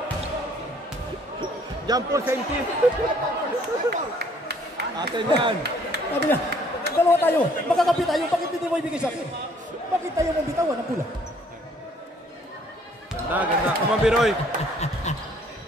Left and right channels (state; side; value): normal; both; correlation 0.61